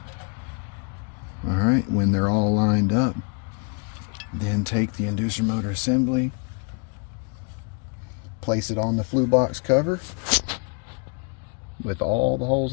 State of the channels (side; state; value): right; quieter; 36.2 dB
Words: All right, when they're all lined up, then take the inducer motor assembly, place it on the flue box cover with all the